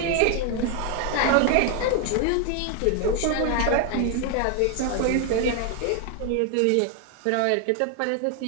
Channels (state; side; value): different; both; correlation 0.01